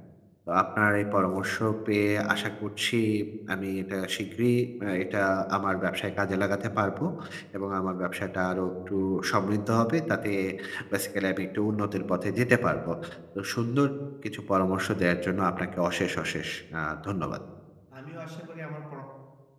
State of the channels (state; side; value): identical; both; correlation 1.00